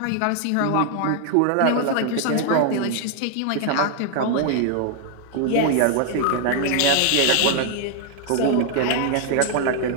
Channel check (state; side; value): different; both; correlation 0.00